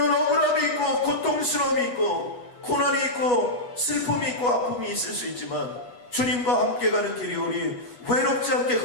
억울함이 있고 고통스러움이 있고 고난이 있고 슬픔이 있고 아픔이 있을 수 있지만 주님과 함께 가는 길이 우리 외롭지 않게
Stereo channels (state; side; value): late; right; 8.3 ms